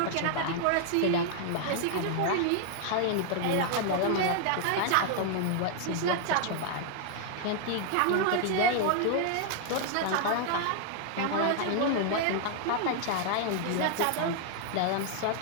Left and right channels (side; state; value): both; different; correlation 0.00